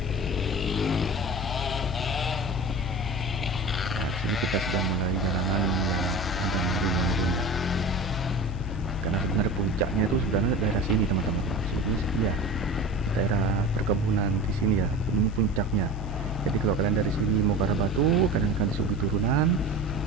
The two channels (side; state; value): both; normal; correlation 0.33